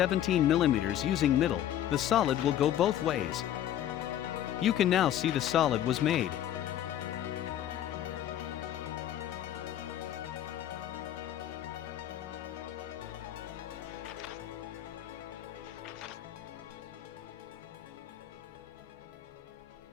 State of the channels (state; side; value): quieter; right; 11.4 dB